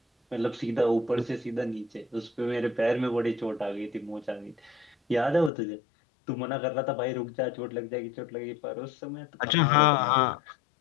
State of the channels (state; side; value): drops out; right; at 5.5 s